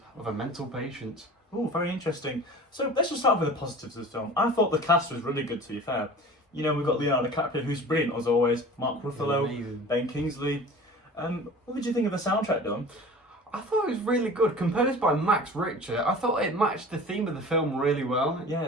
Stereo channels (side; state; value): both; normal; correlation 0.40